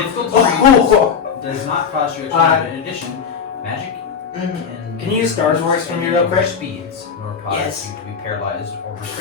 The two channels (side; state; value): right; quieter; 6.6 dB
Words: difficult to read. Does not cost you extra. In addition, magic and Can you use Star's voice for me real quick? Speeds, nor cause Yes. you to be paralyzed or